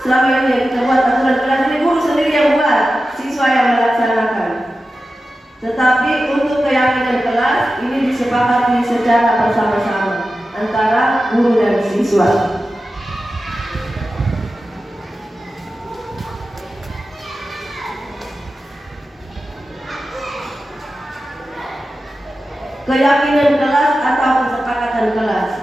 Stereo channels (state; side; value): normal; both; correlation 0.93